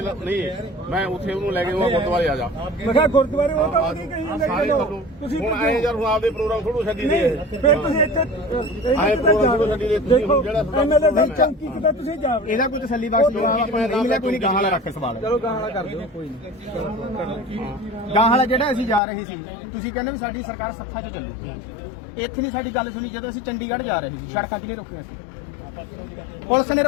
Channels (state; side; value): drops out; right; at 19.0 s